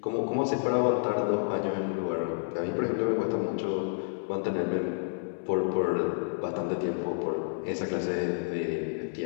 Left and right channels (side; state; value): right; silent; 58 dB below the other